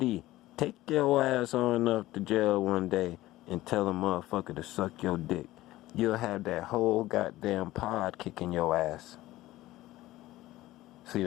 take your ass on up to jail one day and tell a motherfucker to suck your dick. You'll have that whole goddamn pod kicking your ass. See,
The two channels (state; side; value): quieter; right; 16.6 dB